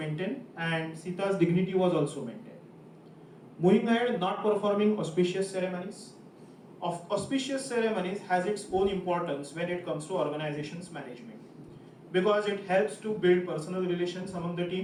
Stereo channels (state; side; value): identical; both; correlation 1.00